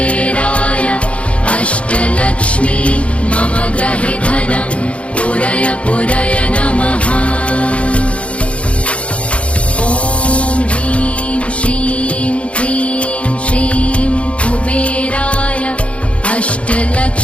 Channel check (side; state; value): right; late; 0.062 ms